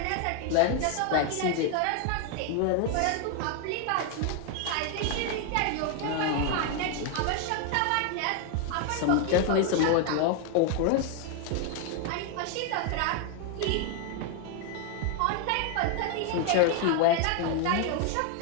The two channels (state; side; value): different; both; correlation 0.00